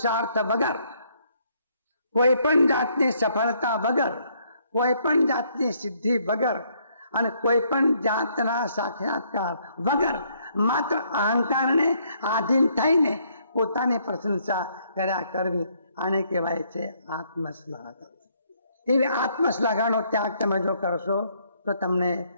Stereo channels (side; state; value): both; inverted; correlation -0.69